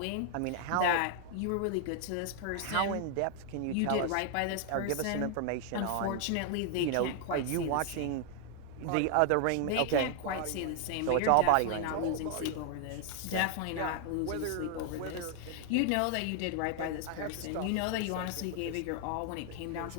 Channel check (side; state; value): both; different; correlation 0.00